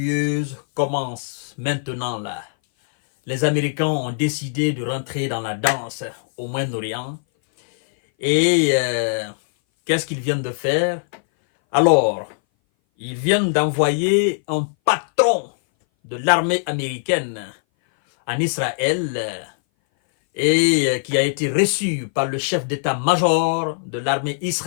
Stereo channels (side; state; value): right; silent; 60 dB below the other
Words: commencent maintenant là. Les Américains ont décidé de rentrer dans la danse au Moyen-Orient. Et qu'est-ce qu'ils viennent de faire? Alors, ils viennent d'envoyer un patron de l'armée américaine en Israël et qui a été reçu par le chef d'état-major de l'armée